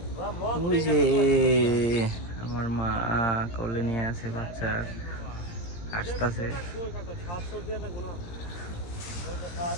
ওই যে আমার মা কোলে নিয়ে আছে বাচ্চা, আসতেছে।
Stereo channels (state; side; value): late; right; 17 ms